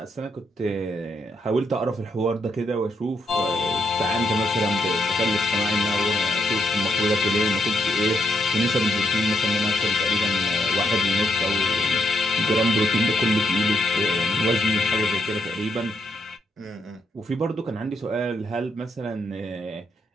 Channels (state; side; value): normal; both; correlation 0.77